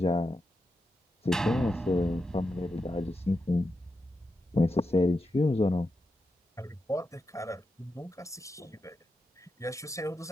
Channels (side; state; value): both; normal; correlation 0.87